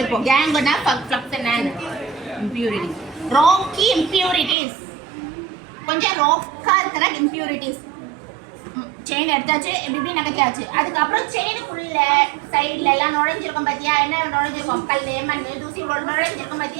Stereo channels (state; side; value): drops out; left; at 4.5 s